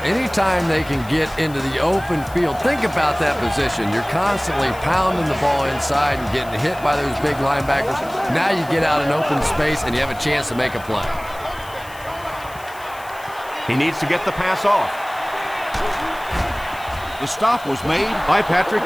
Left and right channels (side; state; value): left; noise; hiss, 21 dB below the sound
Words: Anytime they can get into the open field, think about that position. You're constantly pounding the ball inside and getting hit by those big linebackers. Now you get out in open space and you have a chance to make a play. He needs to get the pass off. The stop was made by Patrick